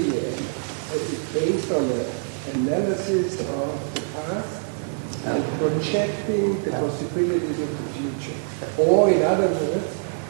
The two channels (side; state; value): left; silent; digital silence